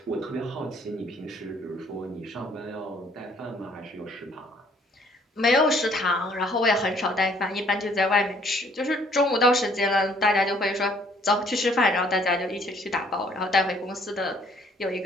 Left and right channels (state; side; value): normal; both; correlation 0.62